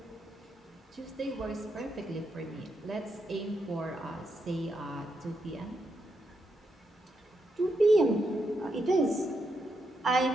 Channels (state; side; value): normal; both; correlation 0.82